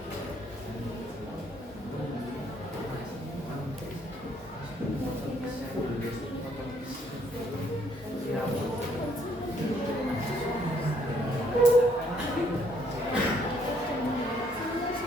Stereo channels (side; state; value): both; normal; correlation 0.67